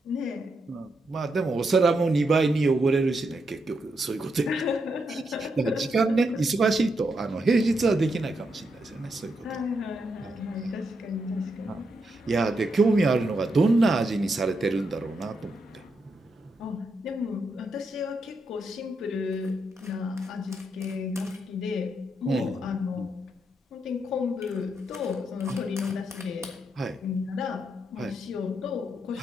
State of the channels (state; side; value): normal; both; correlation 0.82